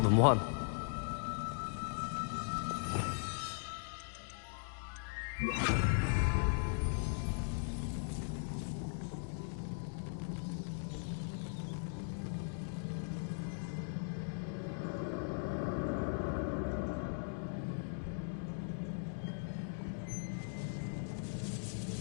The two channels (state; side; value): silent; right; digital silence